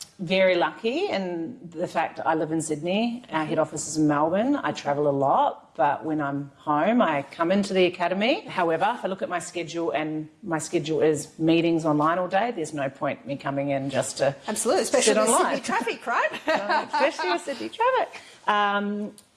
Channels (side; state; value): both; identical; correlation 1.00